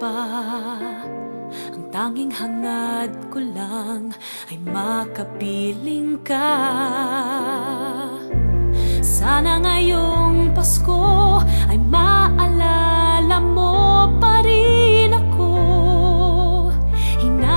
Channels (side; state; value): both; inverted; correlation -1.00